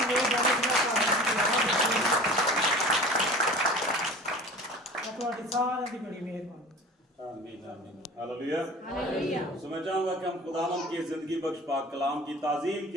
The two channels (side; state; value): both; normal; correlation 0.41